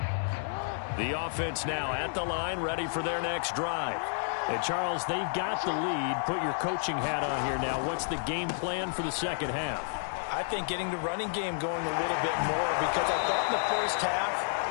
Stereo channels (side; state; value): right; silent; digital silence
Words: The offense now at the line, ready for their next drive. And, Charles, they've got the lead. Put your coaching hat on here now. What's the game plan for the second half? I think getting the running game going a little bit more because I thought in the first